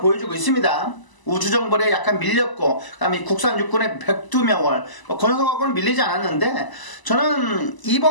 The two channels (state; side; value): late; right; 1.0 ms